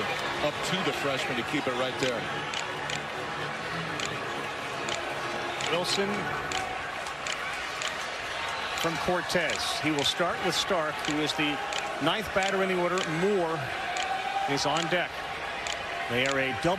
freshman to keep it right there. Wilson from Cortez. He will start with Stark, who is the 9th batter in the order. Moore is on deck. They are a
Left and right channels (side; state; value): both; identical; correlation 1.00